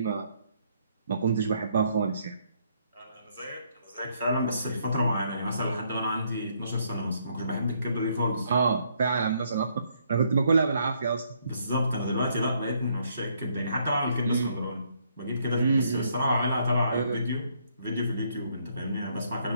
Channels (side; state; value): both; inverted; correlation -0.70